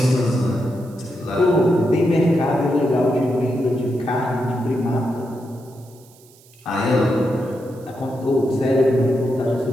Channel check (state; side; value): noise; right; hiss, 27 dB below the sound